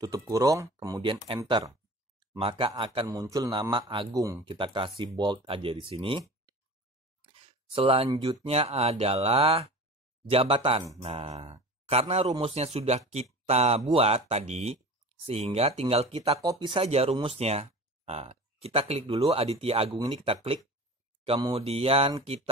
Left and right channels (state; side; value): normal; both; correlation 0.37